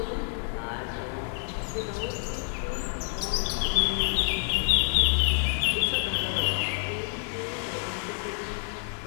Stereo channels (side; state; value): right; silent; 59 dB below the other